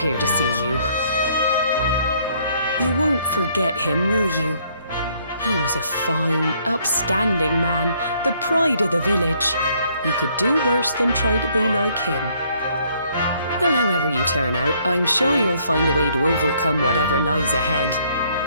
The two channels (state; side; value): inverted; both; correlation -0.66